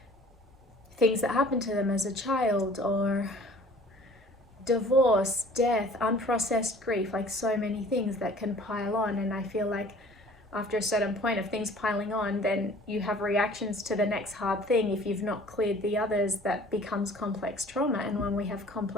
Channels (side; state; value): both; normal; correlation 0.50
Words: things that happened to them as a child, or divorce, death, unprocessed grief, like so many things that can pile on. And I feel like after a certain point of things piling on, then you have reactions to the next hard thing. If you've not cleared the others, that becomes complex trauma. And when we have